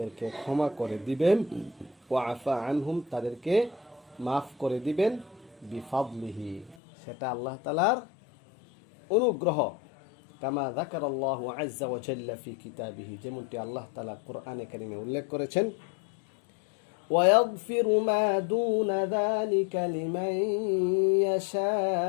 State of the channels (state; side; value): drops out; right; at 6.8 s